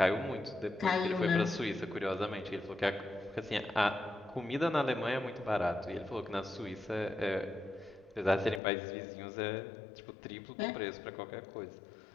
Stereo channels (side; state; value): right; drops out; at 8.6 s